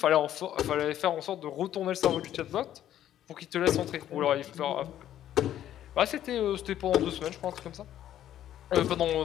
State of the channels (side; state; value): right; quieter; 11.6 dB